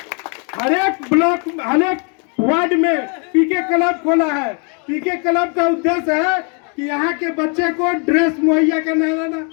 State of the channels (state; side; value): quieter; right; 37.5 dB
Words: हर एक ब्लॉक, हर एक वार्ड में पीके क्लब खोला है। पीके क्लब का उद्देश्य है कि यहाँ के बच्चे को ड्रेस मुहैया कराना,